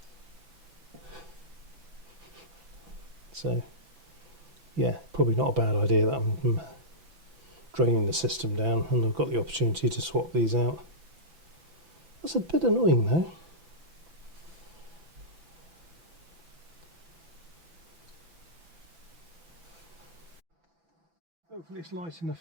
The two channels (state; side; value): late; left; 6.0 ms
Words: So yeah, probably not a bad idea that I'm draining the system down, and I've got the opportunity to swap these out. That's a bit annoying though. Hopefully it's light